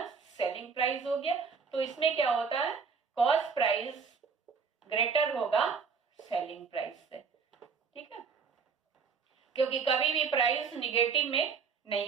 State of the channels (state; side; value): quieter; left; 5.6 dB